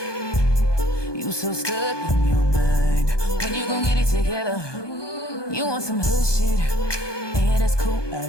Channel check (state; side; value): late; right; 1.2 ms